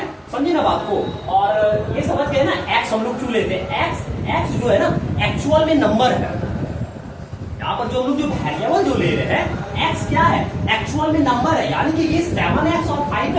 समझे ना बात को। और ये समझ गए ना, एक्स हम लोग क्यों लेते हैं। एक्स जो है ना एक्चुअल में नंबर है। यहाँ पर जो हम लोग जो वेरिएबल जो ले रहे हैं, एक्स क्या है, एक्चुअल में नंबर है। यानी कि ये 7x और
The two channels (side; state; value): both; identical; correlation 1.00